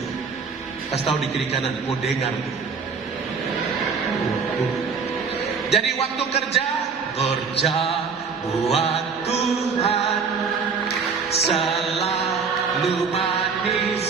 Kasih tahu di kiri kanan, kau dengar. Jadi waktu kerja buat Tuhan selalu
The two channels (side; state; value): left; quieter; 5.5 dB